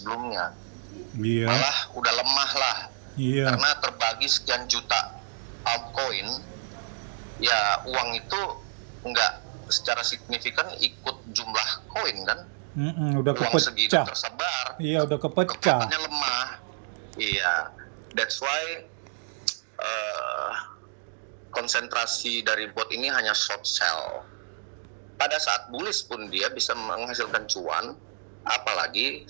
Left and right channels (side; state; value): left; silent; digital silence